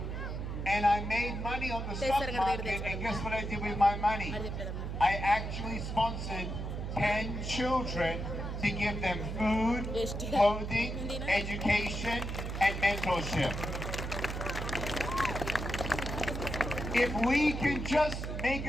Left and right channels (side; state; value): right; noise; hum, 4 dB below the sound